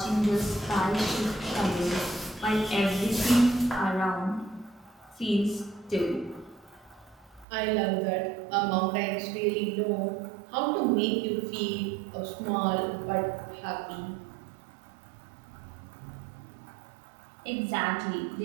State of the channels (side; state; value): left; drops out; at 7.5 s